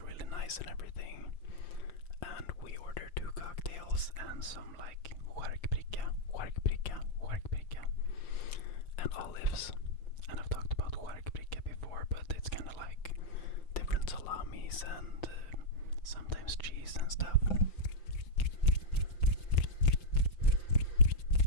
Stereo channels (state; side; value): late; right; 5.8 ms